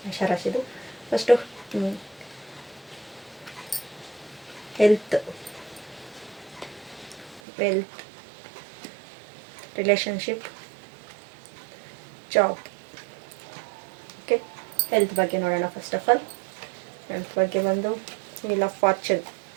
ಮೇಷರಾಶಿದು first health, wealth, relationship, job. Okay, health ಬಗ್ಗೆ ನೋಡೋಣ. ಫಸ್ಟ್ ಆಫ್ ಆಲ್ ಹೆಲ್ತ್ ಬಗ್ಗೆ ಬಂದು ವೀಲ್ ಆಫ್ ಫಾರ್ಚೂನ್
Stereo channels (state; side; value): drops out; left; at 7.4 s